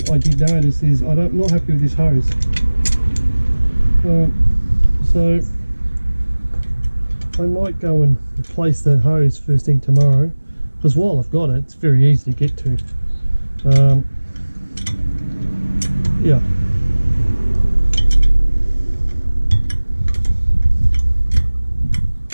I did notice is I'm not happy with this hose. So I might go and replace that hose first thing tomorrow, because while I've got it, it's very easy to get to. Yeah.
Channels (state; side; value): inverted; both; correlation -1.00